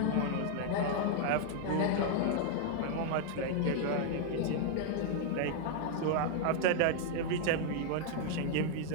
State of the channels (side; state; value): both; different; correlation 0.00